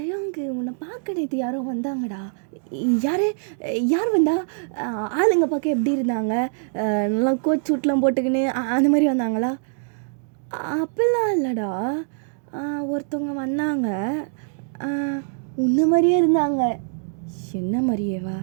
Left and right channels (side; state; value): left; silent; digital silence